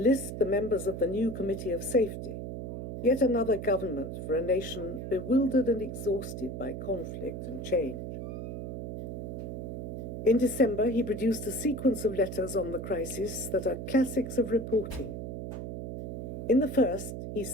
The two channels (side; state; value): right; noise; hum, 6 dB below the sound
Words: the members of the new Committee of Safety, yet another government for a nation bewildered and exhausted by conflict and change. In December, he produced a sequence of letters on the crisis that are classics of reporting. In the first, he